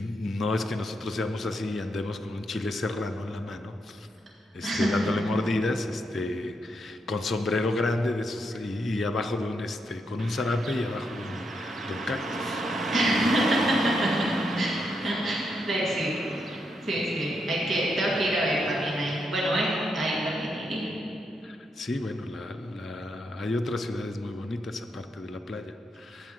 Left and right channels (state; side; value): normal; both; correlation 0.80